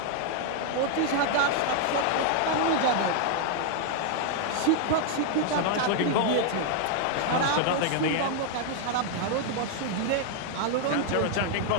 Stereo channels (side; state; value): both; different; correlation 0.00